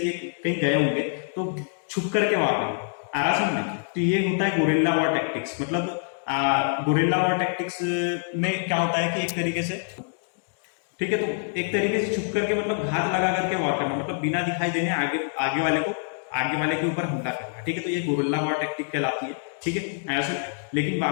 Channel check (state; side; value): silent; right; digital silence